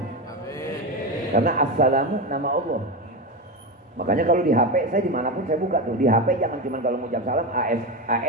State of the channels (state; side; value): normal; both; correlation 0.16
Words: Karena assalamu nama Allah. Makanya kalau di HP saya dimanapun saya buka tuh, di HP jangan cuma kalau mengucap salam